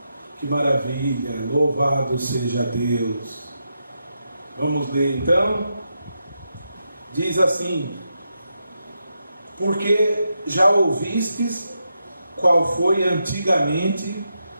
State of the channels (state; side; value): inverted; both; correlation -0.85